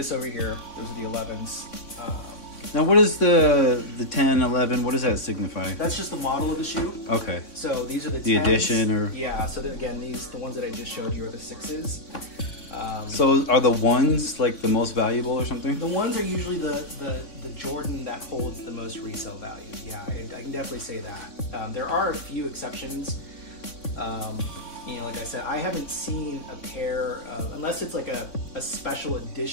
over here. Those are the 11s. Now what is the 10, 11, what does that signify? That's just the model of the shoe. Okay. So these are the 10s. The edition or? Yeah, so again, the ones that I just showed you are the 6s. So are the ones like the most valuable or something? The ones are usually the Jordan that holds the most resale value. Yeah, I can definitely say that. There are a few exceptions. You know, like I said, I haven't seen a pair, unless it's like a special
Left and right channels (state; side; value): late; right; 3.6 ms